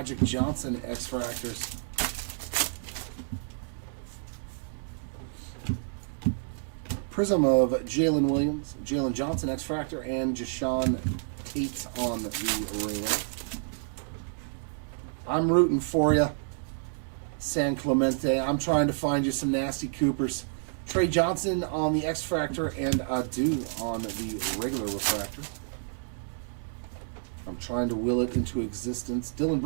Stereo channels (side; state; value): left; silent; digital silence